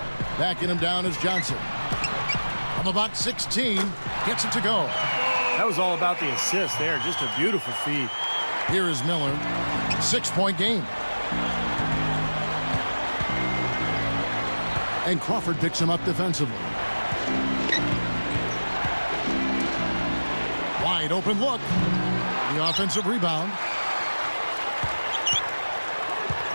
Backing him down is Johnson. From about 16, gets it to go. That was all about the assist there. Just a beautiful feed. Here is Miller. 6-point game. And Crawford picks him up defensively. Wide open look. The offensive rebound.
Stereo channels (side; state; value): both; inverted; correlation -1.00